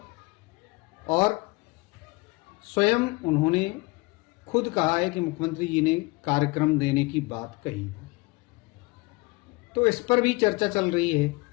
और स्वयं उन्होंने खुद कहा है कि मुख्यमंत्री जी ने कार्यक्रम देने की बात कही है। तो इस पर भी चर्चा चल रही है।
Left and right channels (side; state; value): right; quieter; 24.8 dB